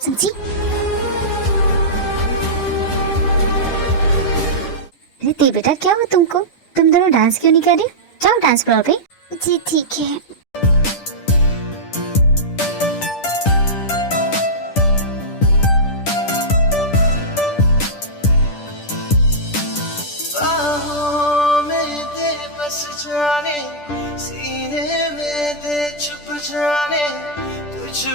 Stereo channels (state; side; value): late; right; 10 ms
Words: अरे ते बेटा क्या हुआ तुमको? तुम दोनों डांस क्यों नहीं कर रहे? जाओ डांस फ्लोर पे। जी ठीक है। बाहों में दे बस जाने, सीने में दे छुप जाने, तुझ